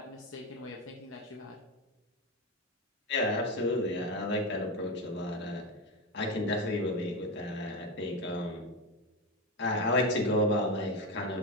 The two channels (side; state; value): both; normal; correlation 0.14